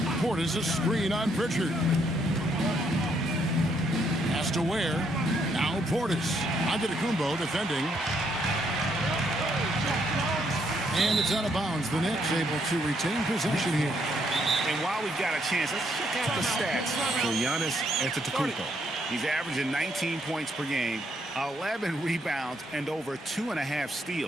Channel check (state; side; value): normal; both; correlation 0.73